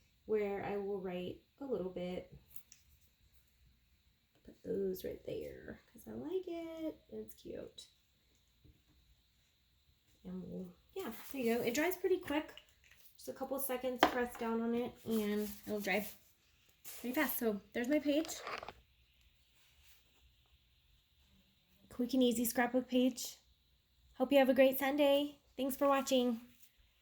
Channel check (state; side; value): identical; both; correlation 1.00